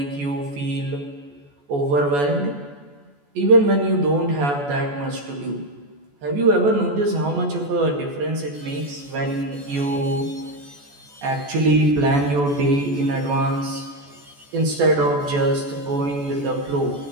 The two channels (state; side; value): late; left; 14 ms